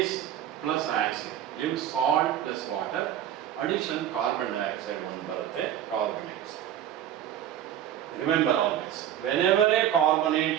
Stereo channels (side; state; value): left; quieter; 11.0 dB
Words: ಪ್ಲಸ್ ಆಸಿಡ್ ಇವು salt plus water. Addition carbon dioxide ಒಂದು ಬರುತ್ತೆ, carbonates. Remember always, whenever a carbonate